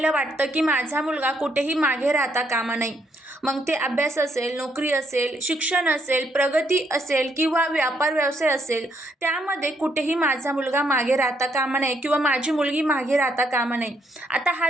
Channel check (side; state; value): both; normal; correlation 0.74